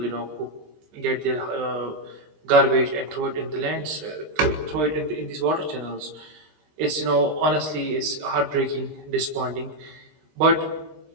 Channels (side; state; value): left; late; 20 ms